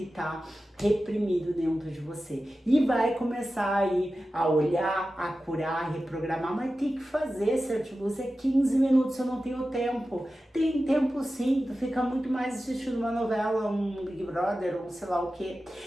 tá reprimido dentro de você. E vai começar aí a olhar, a curar, a reprogramar, mas tem que fazer, certo? Você 15 minutos, eu não tenho tempo. Tem tempo sim, tu fica muito mais assistindo uma novela, um Big Brother, ou sei lá o que.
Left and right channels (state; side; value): normal; both; correlation 0.94